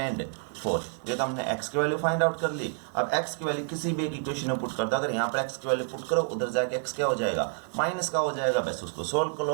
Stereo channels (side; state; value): left; silent; 57 dB below the other